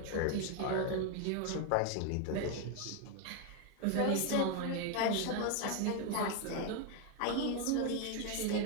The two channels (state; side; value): different; both; correlation 0.01